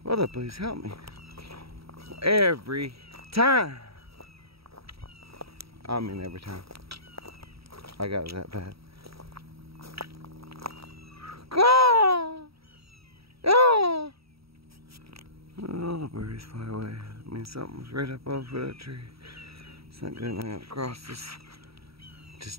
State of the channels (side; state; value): left; late; 0.76 ms